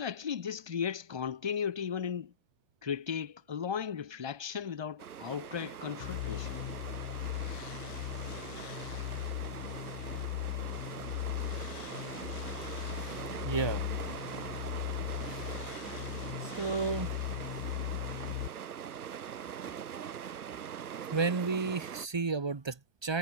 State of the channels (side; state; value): left; late; 1.2 ms